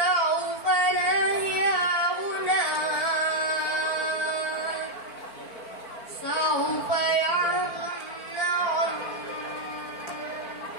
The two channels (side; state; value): right; late; 4.5 ms